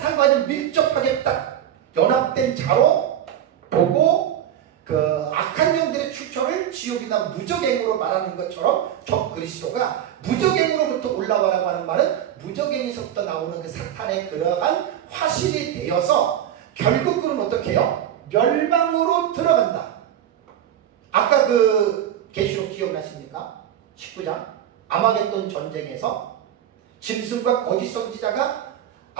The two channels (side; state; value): left; quieter; 10.6 dB